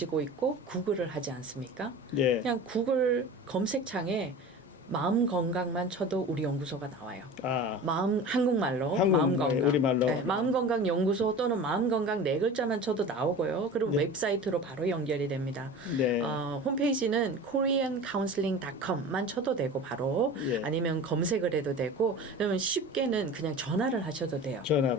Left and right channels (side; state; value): both; normal; correlation 0.36